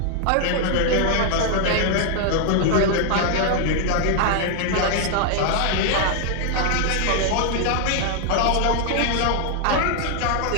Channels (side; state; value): both; different; correlation 0.00